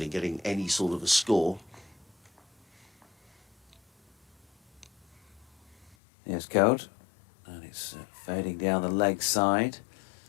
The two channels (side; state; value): right; drops out; at 6.0 s